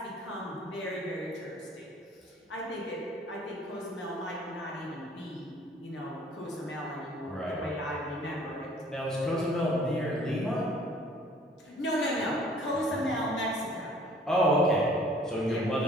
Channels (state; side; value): normal; both; correlation 0.55